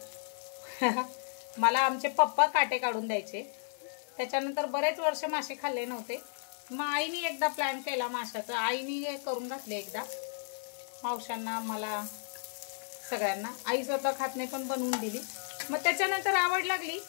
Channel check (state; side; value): silent; right; digital silence